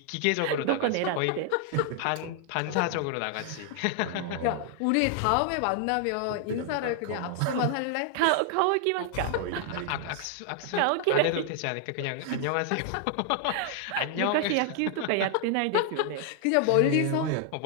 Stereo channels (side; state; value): both; different; correlation 0.00